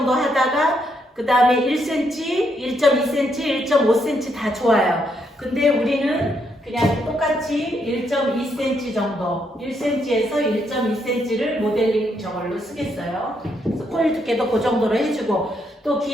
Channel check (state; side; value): normal; both; correlation 0.76